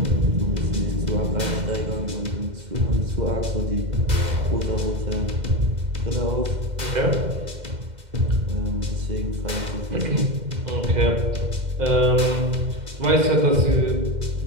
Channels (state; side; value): late; left; 2.0 ms